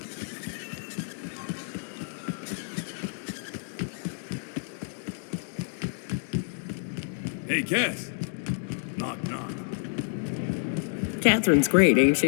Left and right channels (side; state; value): right; silent; digital silence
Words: Hey, Cass. Knock, knock. Catherine's great, ain't